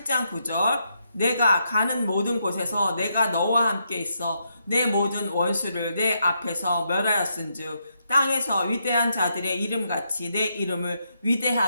9절 내가 가는 모든 곳에서 내가 너와 함께 있어 내 모든 원수를 내 앞에서 멸하였은즉 땅에서 위대한 자들의 이름같이 내 이름을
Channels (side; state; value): both; inverted; correlation -0.80